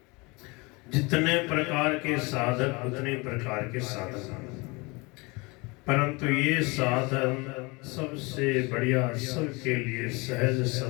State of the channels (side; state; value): right; quieter; 26.6 dB